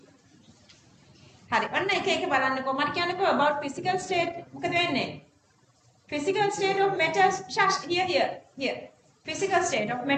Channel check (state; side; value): identical; both; correlation 1.00